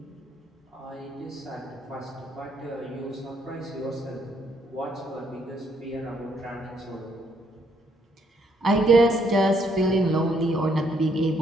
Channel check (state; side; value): normal; both; correlation 0.71